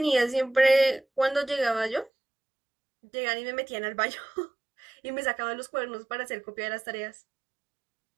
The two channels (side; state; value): left; drops out; at 2.1 s